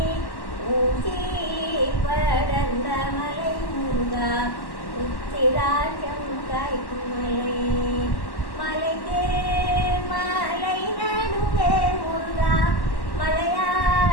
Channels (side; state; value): right; late; 1.1 ms